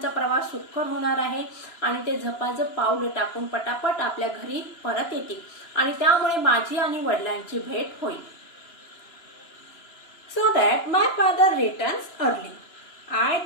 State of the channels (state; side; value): late; right; 2.9 ms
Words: प्रवास सुखकर होणार आहे आणि ते झपाझप पावलं टाकून पटापट आपल्या घरी परत येतील आणि त्यामुळे माझी आणि वडिलांची भेट होईल. So that my father returns early. I